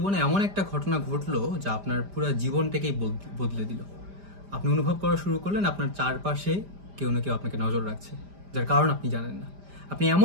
এমন একটা ঘটনা ঘটলো যা আপনার পুরো জীবনটাকেই বদলে দিল। আপনি অনুভব করা শুরু করলেন আপনার চারপাশে কেউ না কেউ আপনাকে নজর রাখছে, যার কারণ আপনি জানেন না। আপনি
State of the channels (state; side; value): late; left; 5.0 ms